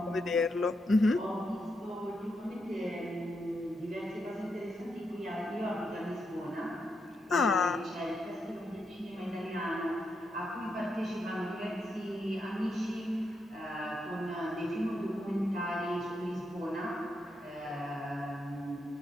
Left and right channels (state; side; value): normal; both; correlation 0.82